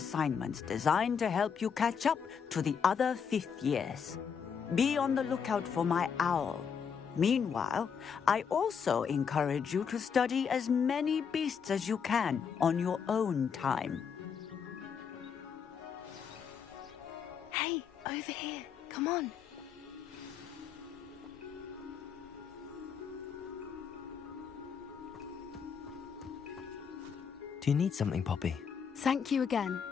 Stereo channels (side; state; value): right; quieter; 6.8 dB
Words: designed to help you catch up to the other fifth years. Be on the lookout for my owl. Meanwhile, I also encourage you to study as many beasts as you can on your own time. Hey, over here. Come on. Do you need something, Poppy? Thank you again